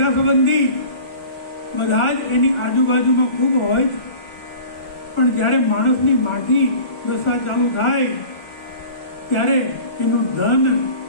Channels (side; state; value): right; late; 1.4 ms